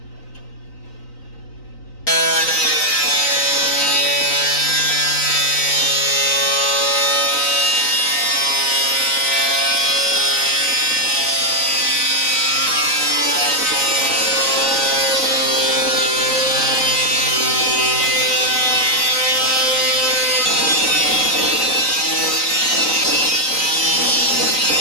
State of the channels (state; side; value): late; right; 3.9 ms